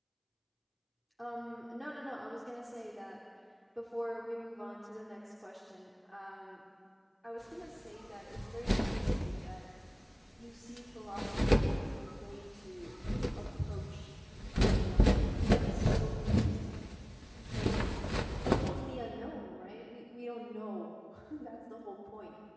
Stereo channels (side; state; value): both; identical; correlation 1.00